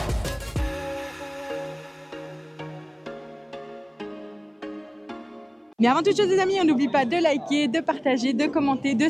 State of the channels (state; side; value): identical; both; correlation 1.00